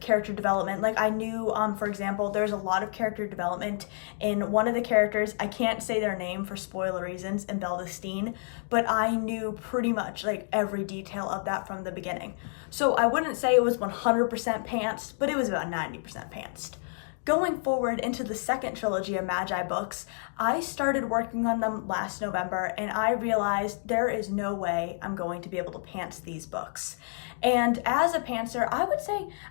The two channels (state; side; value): silent; right; 58 dB below the other